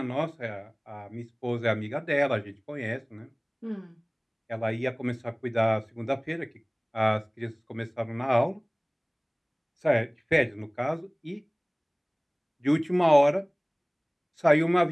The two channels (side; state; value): both; identical; correlation 1.00